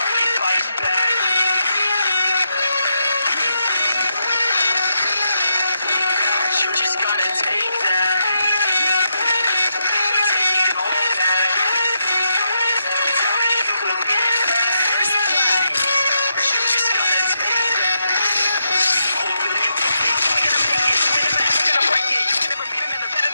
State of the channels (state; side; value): inverted; both; correlation -0.82